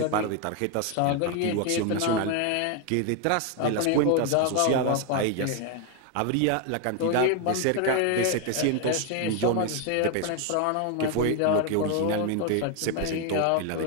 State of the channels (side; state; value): both; different; correlation 0.01